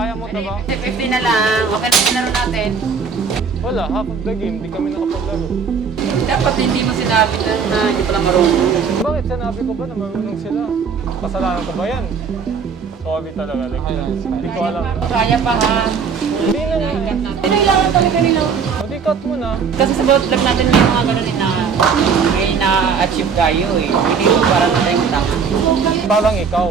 mo na ba? 50 na lang. Okay na yung laro natin. Wala, half of the game, di kami nakapaglaro. Dapat hindi mo sinabi na hindi pala marunong. Bakit sinabi ko ba na marunong sila? Kasalanan ko ba yan? Sorry talaga, like, hindi ko alam. Kaya pa ha. Hindi na nga. Kailangan talaga nila. O di cut mo na. Kasi sa bawat vlog natin may mga ganun na may na-achieve tayo eh. Hindi mo para na tayong tama. Parang ikaw.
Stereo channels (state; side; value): quieter; left; 5.9 dB